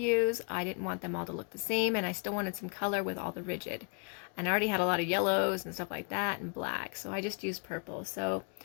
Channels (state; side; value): quieter; right; 36.6 dB